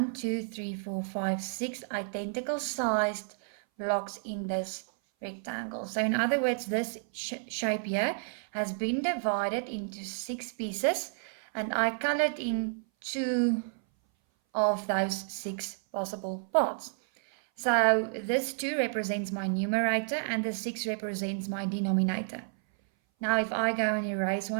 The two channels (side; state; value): left; silent; 57 dB below the other